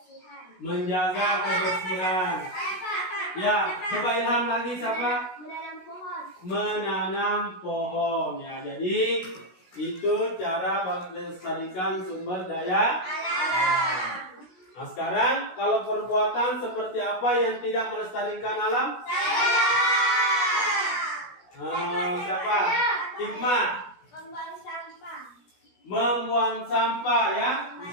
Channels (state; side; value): late; right; 16 ms